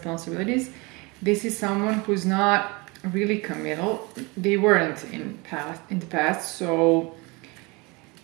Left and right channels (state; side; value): quieter; left; 26.7 dB